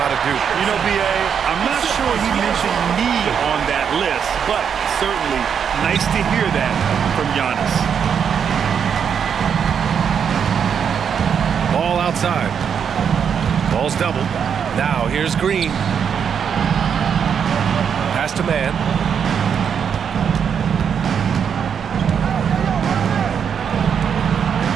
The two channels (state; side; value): quieter; left; 7.4 dB